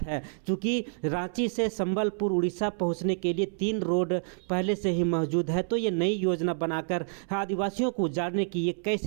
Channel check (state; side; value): silent; left; 59 dB below the other